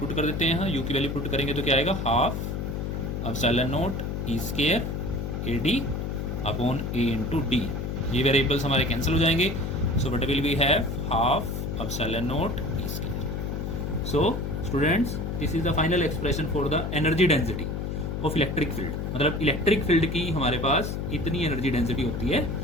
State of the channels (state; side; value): noise; left; hum, 3 dB below the sound